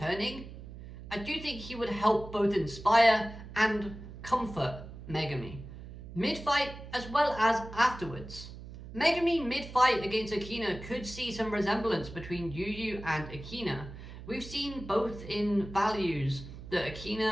I do think he would help both inspire and comfort Megami. Mid-fight as well as afterwards. Megami mid-fight against Akina could see some resemblance between Yu and Akina. We've seen both in values that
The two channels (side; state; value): right; noise; hum, 13 dB below the sound